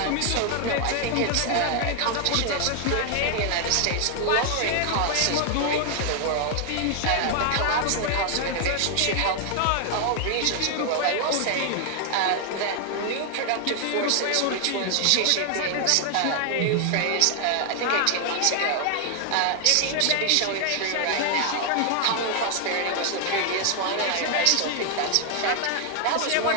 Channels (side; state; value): both; different; correlation 0.00